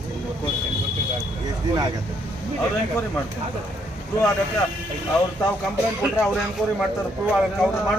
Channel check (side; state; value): both; normal; correlation 0.72